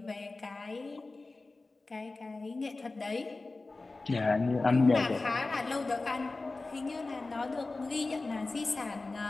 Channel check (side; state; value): right; quieter; 3.4 dB